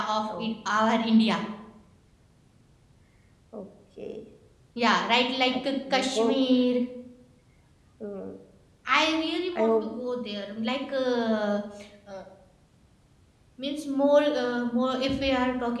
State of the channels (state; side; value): identical; both; correlation 1.00